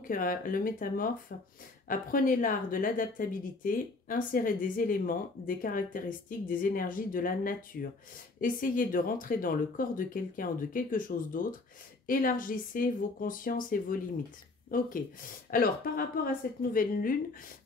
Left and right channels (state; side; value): quieter; right; 3.4 dB